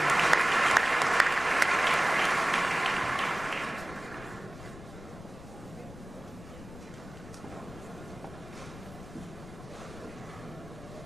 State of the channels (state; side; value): noise; left; rumble, 15 dB below the sound